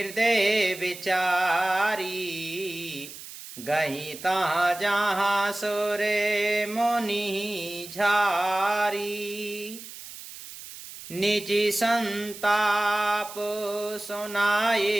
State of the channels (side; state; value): right; noise; hiss, 14 dB below the sound